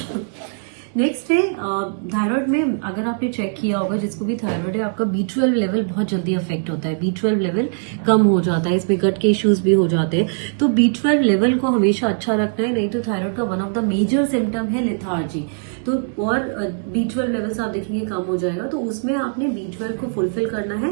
नेक्स्ट है थायराइड में, अगर आपने चेक किया होगा जिसको भी थायराइड है, आपका B12 लेवल बहुत जल्दी अफेक्ट होता है, B12 लेवल कम हो जाता है, इसमें गट के इश्यूज भी हो जाते हैं। तो B12 लेवल को हमेशा अच्छा रखना है, नहीं तो थायराइड का one of the major symptom है लेथार्जी। तो और B12 लेवल्स आप देखेंगे कम हो जाएगा, तो उसमें आपने B12 को फुलफिल करना है।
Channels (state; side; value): silent; left; digital silence